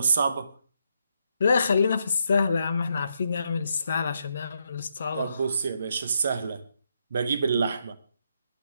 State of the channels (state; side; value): inverted; both; correlation -0.79